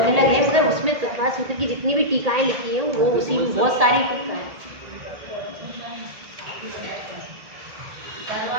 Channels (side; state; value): left; late; 1.8 ms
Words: अलग है, मगर उसमें तत्वा सूत्र की जितनी भी टीकाएं लिखी हैं वो उसी में बहुत सारी टीका है।